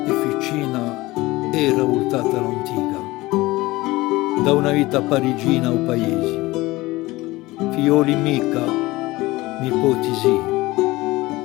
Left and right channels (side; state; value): right; quieter; 19.9 dB